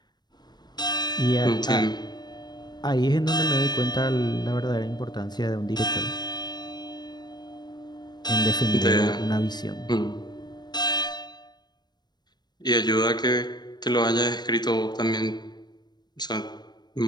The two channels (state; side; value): late; right; 0.20 ms